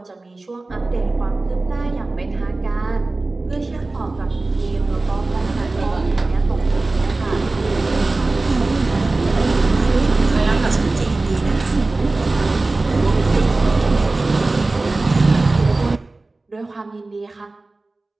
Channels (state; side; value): quieter; left; 3.2 dB